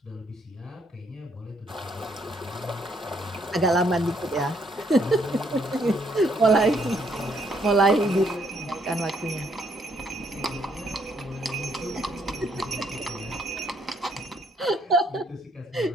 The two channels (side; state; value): both; normal; correlation 0.70